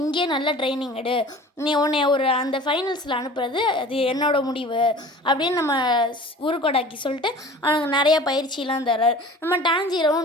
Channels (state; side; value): normal; both; correlation 0.42